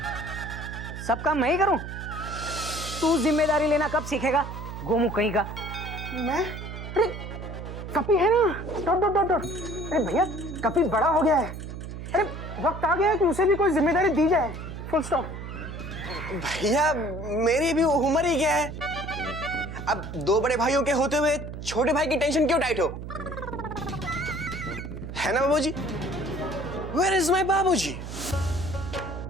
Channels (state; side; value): noise; right; hum, 9 dB below the sound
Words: सब काम मैं ही करूं? तू जिम्मेदारी लेना कब सीखेगा गोमू कहीं का? मैं? अरे कपी है ना, डॉट डॉट डॉट डॉट। अरे भैया कपी बड़ा हो गया है, अरे वक्त आ गया है कि उसे भी कोई जिम्मेदारी दी जाए, फुल स्टॉप। भैया मेरी भी उम्र ही क्या है, अब दो बड़े भाइयों के होते हुए छोटे भाई की टेंशन क्यों टाइट हो, है ना बाबूजी? Where is my बाबूजी?